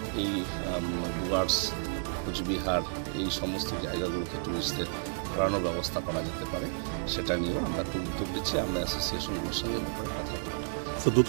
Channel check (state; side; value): silent; left; digital silence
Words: এই ডুয়ার্স, কোচবিহার এই সমস্ত জায়গাগুলোকে টুরিস্টদের ঘোরানোর ব্যবস্থা করা যেতে পারে, সেটা নিয়েও আমরা একটু উদ্যোগ দিচ্ছি। আমরা অ্যাসোসিয়েশনগুলোর সঙ্গে ব্যাপারে কথা বলব। তো